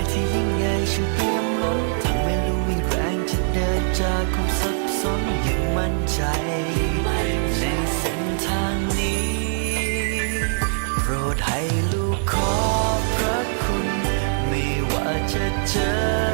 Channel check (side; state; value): left; silent; digital silence